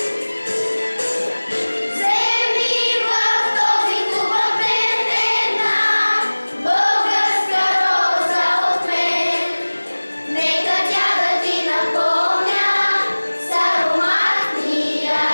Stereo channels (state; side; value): inverted; both; correlation -1.00